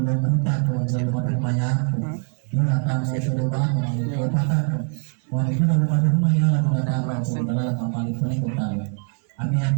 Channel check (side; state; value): left; quieter; 37.3 dB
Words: berita kalau jadi mati banyak ina kami itu bangun itu patah wah itu rumah ya lalu ada orang dalam kapal itu nih kita kami